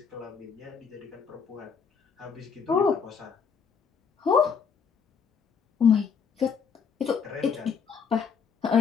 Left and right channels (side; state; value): right; quieter; 6.3 dB